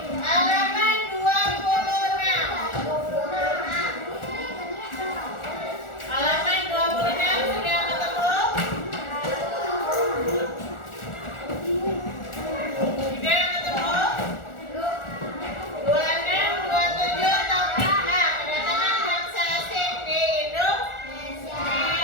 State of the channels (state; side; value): late; right; 1.4 ms